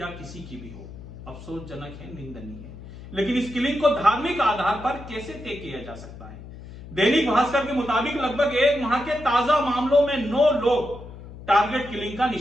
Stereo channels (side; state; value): left; noise; hum, 15 dB below the sound